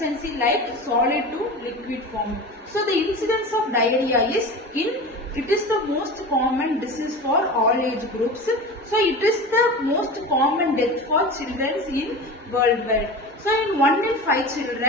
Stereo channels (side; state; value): both; normal; correlation 0.31